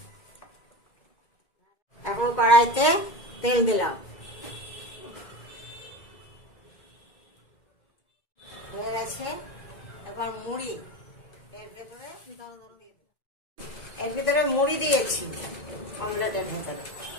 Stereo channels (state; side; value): late; right; 2.2 ms